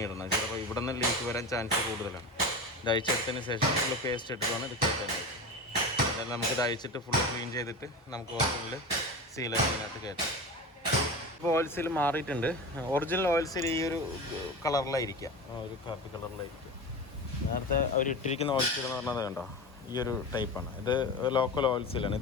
ഇടണം. ചിലപ്പോൾ ഇവിടെ നിന്ന് ലീക്ക് വരാൻ ചാൻസ് കൂടുതലാണ്. ഇത് അഴിച്ചെടുത്തതിന് ശേഷം നമ്മൾ പേസ്റ്റ് ഇട്ടിട്ടാണ് ഇത് കയറ്റാനായിട്ട്. എന്തായാലും നമുക്കിത് അയച്ചിട്ട് ഫുള്ള് ക്ലീൻ ചെയ്തിട്ട് നമുക്ക് ഒറിജിനൽ സീലതിനകത്ത് കയറ്റാം. ഇപ്പോൾ ഓയിൽ സീൽ മാറിയിട്ടുണ്ട്. ഒറിജിനൽ ഓയിൽ സീൽ ഈ ഒരു കളറിലായിരിക്കുക, ഒരു കാപ്പി കളറിലായിരിക്കുക. നേരത്തെ അവർ ഇട്ടിരിക്കുന്ന ഓയിൽ സീൽ എന്ന് പറഞ്ഞത് കണ്ടോ, ഈ ഒരു ടൈപ്പാണ്. ഇത് ലോക്കൽ ഓയിൽ സീലാണ്.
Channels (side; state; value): both; normal; correlation 0.27